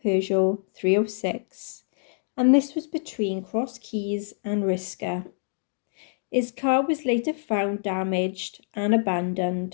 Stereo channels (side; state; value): right; silent; digital silence